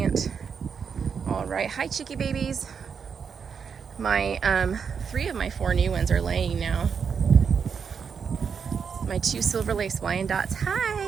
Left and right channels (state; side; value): quieter; left; 6.4 dB